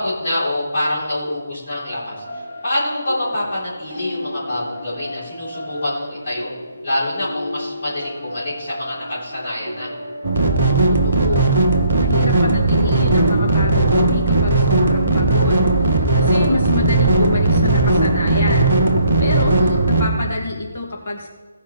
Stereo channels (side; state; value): both; inverted; correlation -0.65